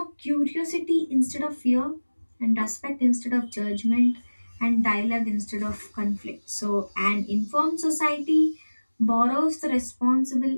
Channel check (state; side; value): inverted; both; correlation -1.00